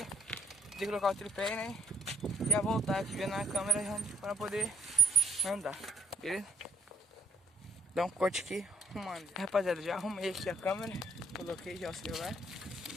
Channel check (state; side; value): normal; both; correlation 0.67